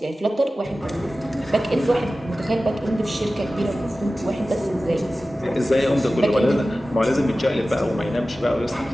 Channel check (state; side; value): normal; both; correlation 0.95